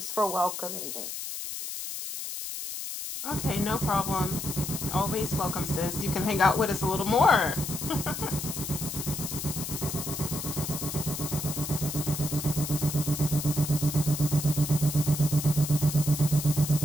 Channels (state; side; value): noise; left; hiss, 6 dB below the sound